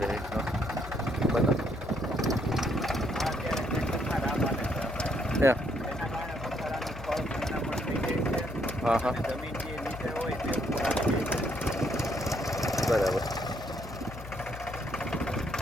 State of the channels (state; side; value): noise; left; hum, 13 dB below the sound